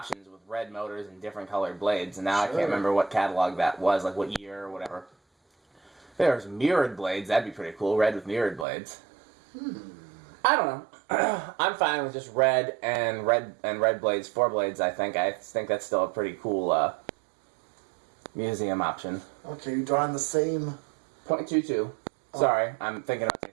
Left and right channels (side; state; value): left; drops out; at 8.7 s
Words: with red motors and different colored blades, and now I can't remember what catalog that was, like what year or whatever. If there's mirrored blades, that'd be pretty cool. Red with mirrored blades. I don't know. I'm fine with just red blades, 4 blades. I think that's still a pretty cool museum option. Okay, you're drawing the same .22. Sorry, I'm thinking about two